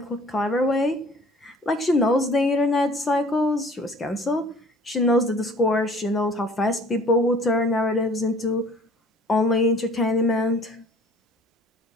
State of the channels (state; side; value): normal; both; correlation 0.51